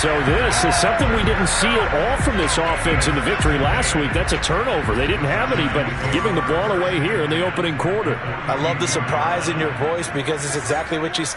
this is something we didn't see at all from this offense in the victory last week. That's a turnover. They didn't have any, but giving the ball away here in the opening quarter. I love the surprise in your voice because it's exactly what you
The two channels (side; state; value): both; identical; correlation 1.00